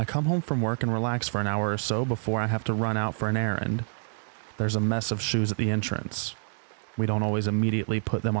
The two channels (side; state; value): left; silent; digital silence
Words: come home from work and relax for an hour or so before I have to run out for an errand. There's a mess of shoes at the entrance. We don't always immediately put them